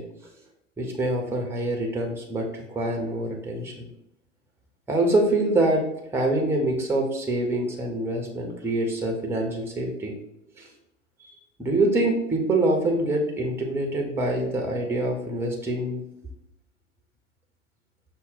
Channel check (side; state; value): both; normal; correlation 0.47